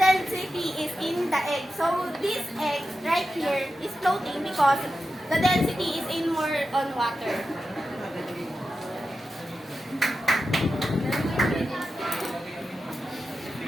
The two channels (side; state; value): both; normal; correlation 0.91